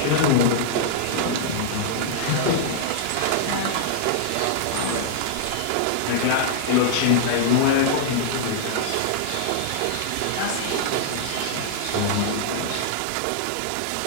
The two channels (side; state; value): both; different; correlation -0.01